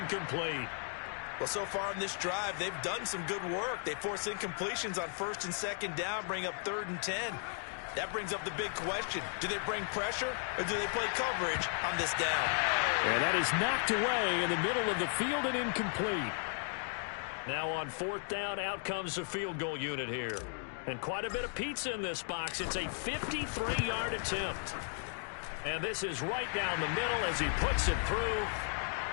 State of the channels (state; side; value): silent; right; 54 dB below the other